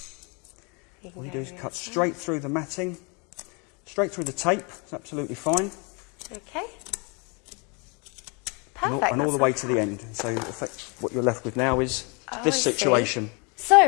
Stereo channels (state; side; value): quieter; right; 32.0 dB